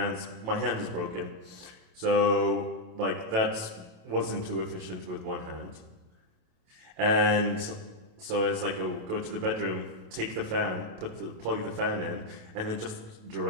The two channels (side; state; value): left; late; 28 ms